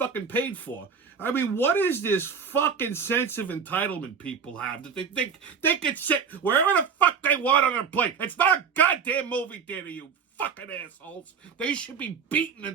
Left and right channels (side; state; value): left; quieter; 6.4 dB